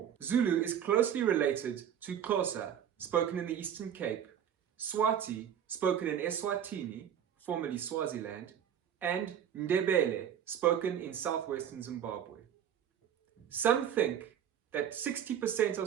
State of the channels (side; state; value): left; quieter; 9.2 dB